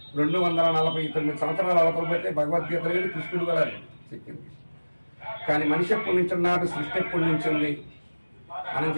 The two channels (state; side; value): inverted; both; correlation -1.00